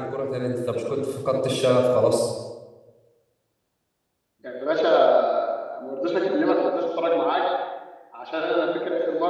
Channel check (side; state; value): both; identical; correlation 1.00